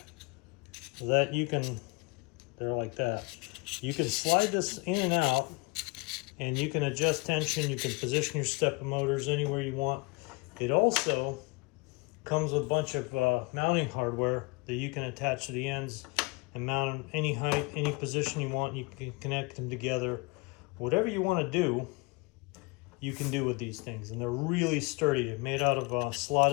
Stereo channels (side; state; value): right; quieter; 28.0 dB